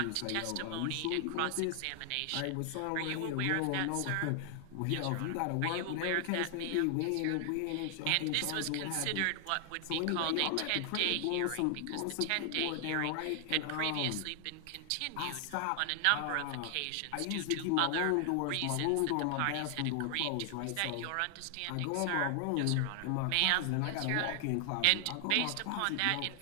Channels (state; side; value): different; both; correlation 0.00